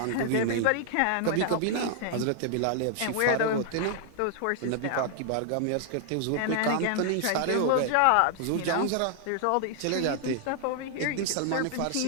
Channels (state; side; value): different; both; correlation 0.00